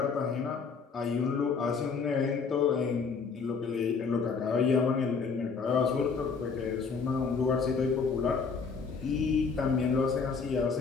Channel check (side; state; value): right; quieter; 5.2 dB